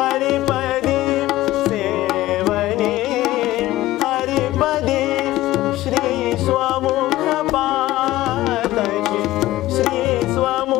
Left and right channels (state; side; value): quieter; right; 16.4 dB